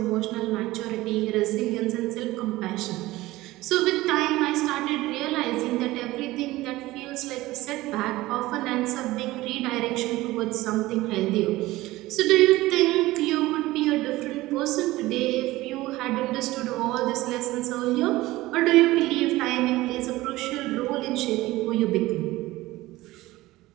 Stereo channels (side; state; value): left; quieter; 18.2 dB